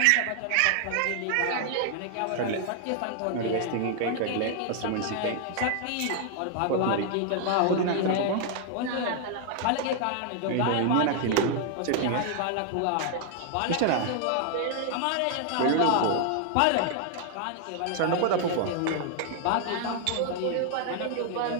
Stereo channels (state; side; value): different; both; correlation 0.00